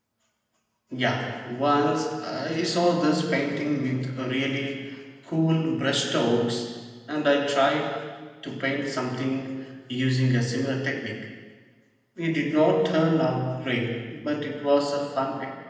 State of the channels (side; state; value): both; identical; correlation 1.00